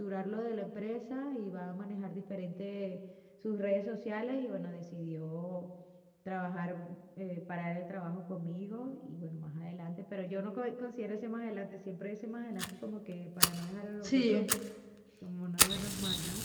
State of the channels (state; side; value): identical; both; correlation 1.00